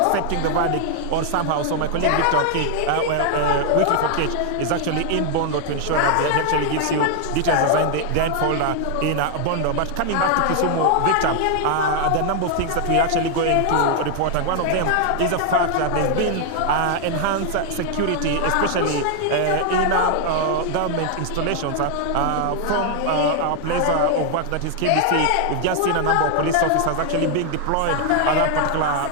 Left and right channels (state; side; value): different; both; correlation 0.00